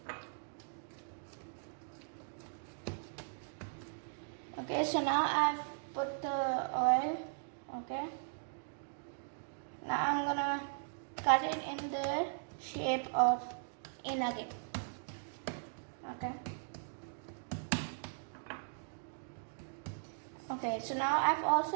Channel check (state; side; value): silent; left; digital silence